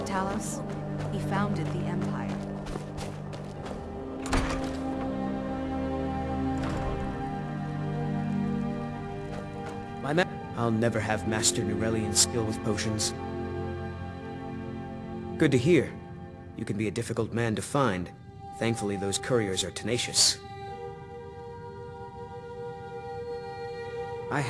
Talos? He founded the Empire. I'll never have Master Nurelian's skill with potions. Good to hear. You can be a difficult man to find. Thankfully, those couriers are tenacious. I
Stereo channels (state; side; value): identical; both; correlation 1.00